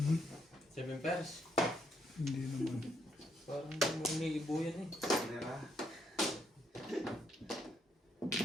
7 pairs? Hindi naman. Parang umiibo yan eh.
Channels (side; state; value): both; normal; correlation 0.74